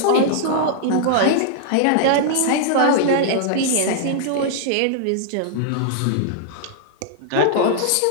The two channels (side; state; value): both; different; correlation -0.01